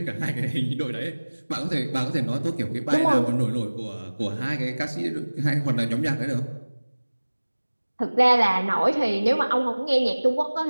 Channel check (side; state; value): both; inverted; correlation -1.00